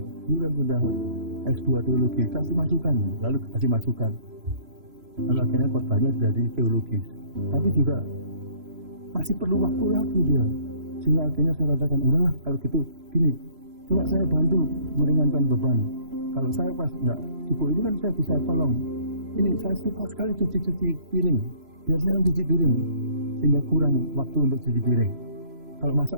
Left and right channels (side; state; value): left; late; 3.0 ms